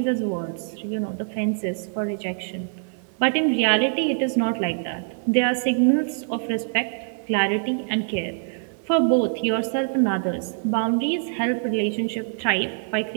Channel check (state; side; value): silent; left; 58 dB below the other